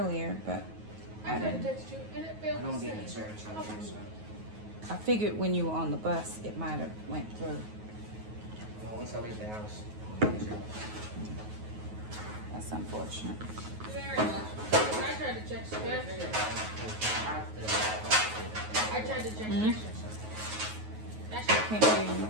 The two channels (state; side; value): late; left; 9.4 ms